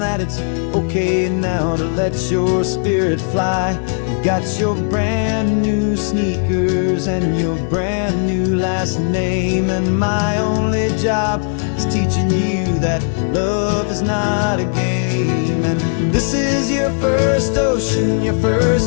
it's okay now to let your spirit fly. You've got your brand new sneakers and your brand new last name, and my only job is teaching you that love is not a game. And this is your first ocean, your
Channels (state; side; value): silent; right; digital silence